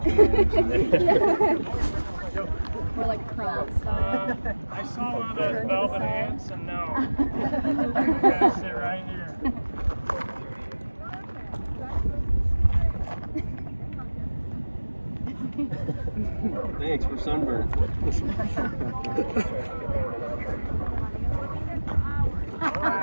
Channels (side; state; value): both; inverted; correlation -1.00